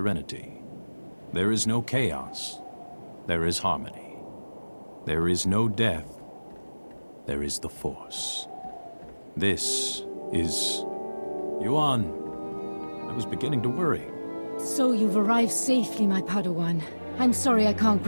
There is no chaos, there is harmony. There is no death, there is the Force. This is... Yuan, I was beginning to worry. So you've arrived safely, my Padawan. I'm sorry I can't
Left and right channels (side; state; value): both; inverted; correlation -1.00